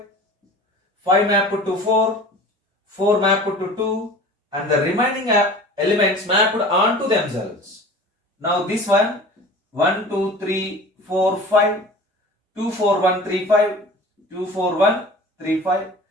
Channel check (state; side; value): normal; both; correlation 0.40